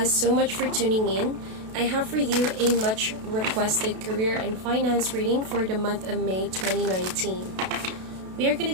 so much for tuning in. I have for you a much requested career and finance reading for the month of May 2019. We are going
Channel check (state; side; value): late; left; 32 ms